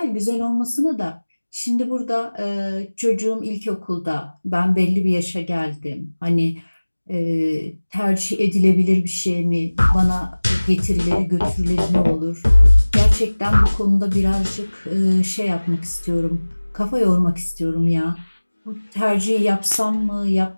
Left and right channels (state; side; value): inverted; both; correlation -1.00